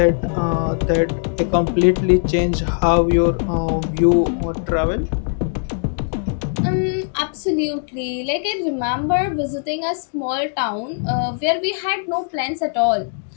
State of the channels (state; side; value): silent; right; 66 dB below the other